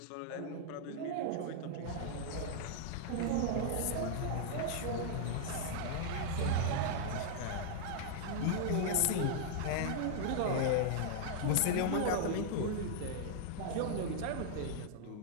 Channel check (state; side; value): different; both; correlation -0.01